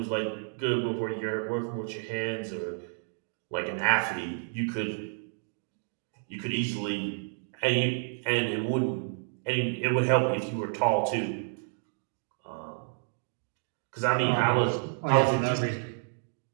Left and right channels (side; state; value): left; silent; digital silence